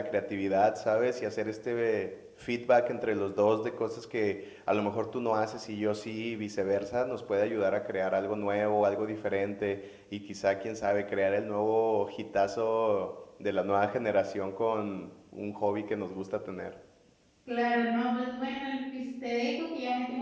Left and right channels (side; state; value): both; identical; correlation 1.00